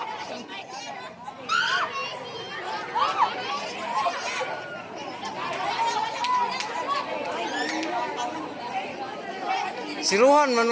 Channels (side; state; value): both; identical; correlation 1.00